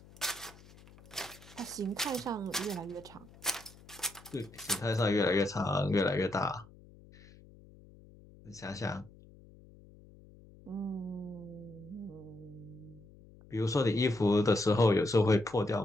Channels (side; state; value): left; noise; hum, 22 dB below the sound